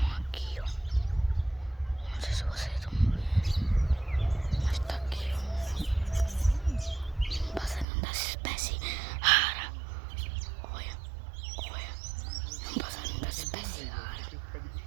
aqui, ó. Não sei se vocês estão vendo, mas tá aqui, ó. Um passarinho da espécie rara. Olha, olha. É um passarinho da espécie rara.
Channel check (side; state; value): left; drops out; at 7.9 s